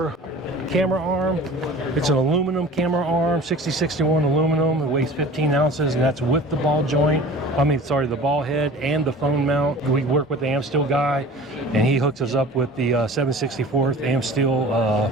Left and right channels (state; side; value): normal; both; correlation 0.42